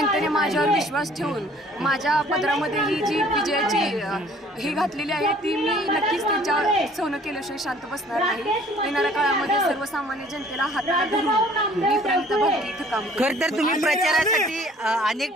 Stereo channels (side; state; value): both; normal; correlation 0.55